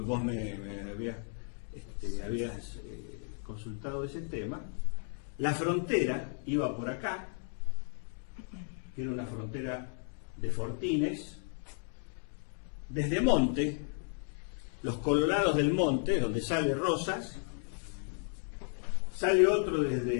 vos me habías consultado ese tema. La frontera iba por acá, que era una frontera de fortines. Desde Monte, los Colorados del Monte, donde sale Rosas, sale otro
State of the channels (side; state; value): right; silent; 55 dB below the other